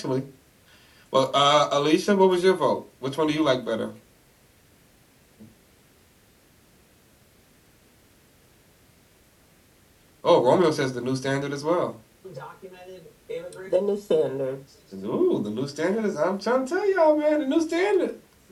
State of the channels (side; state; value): both; identical; correlation 1.00